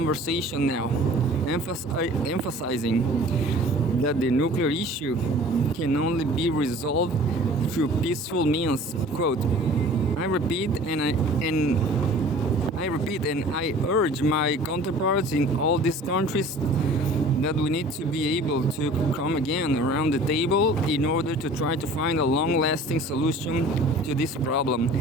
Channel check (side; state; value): both; normal; correlation 0.46